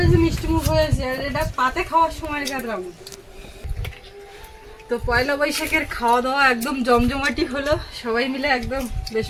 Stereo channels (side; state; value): both; identical; correlation 1.00